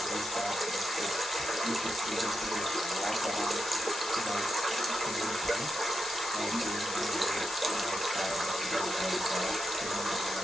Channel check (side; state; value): left; noise; hiss, 6 dB below the sound